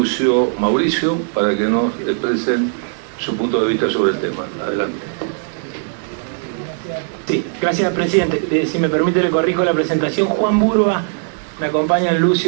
Mauricio para que nos expresen su punto de vista sobre el tema. Adelante. Sí, gracias, presidente. Si me permite, le corrijo la presentación. Juan Burba, me acompañan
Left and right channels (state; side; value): silent; left; 65 dB below the other